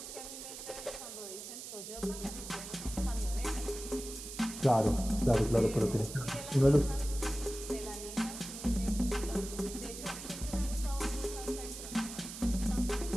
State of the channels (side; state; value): right; noise; hiss, 10 dB below the sound